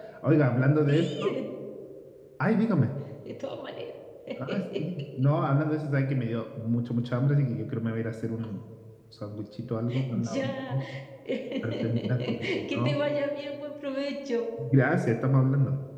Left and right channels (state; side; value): identical; both; correlation 1.00